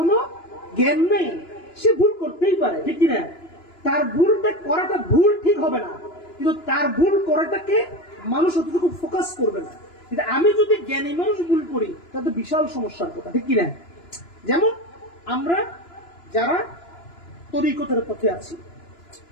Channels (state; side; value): late; right; 2.9 ms